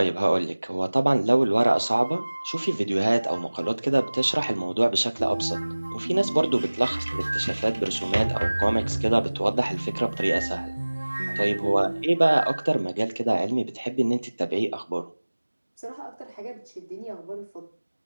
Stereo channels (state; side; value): inverted; both; correlation -1.00